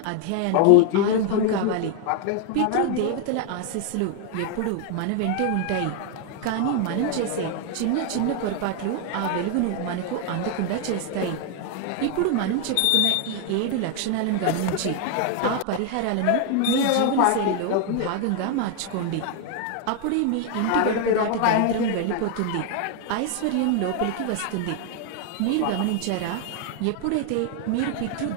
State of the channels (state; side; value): different; both; correlation 0.00